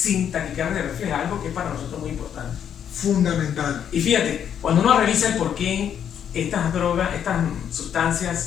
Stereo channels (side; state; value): right; quieter; 8.9 dB